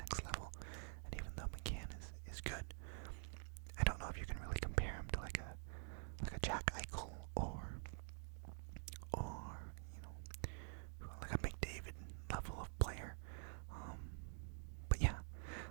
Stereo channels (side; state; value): left; silent; digital silence